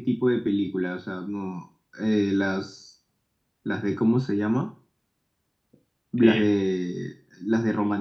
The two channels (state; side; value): identical; both; correlation 1.00